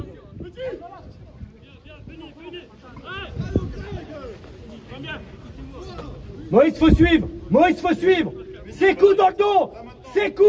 Moïse, faut suivre. Ses coups dans le dos.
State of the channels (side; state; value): both; identical; correlation 1.00